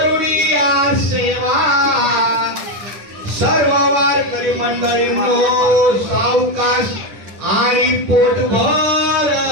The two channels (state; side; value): late; left; 10 ms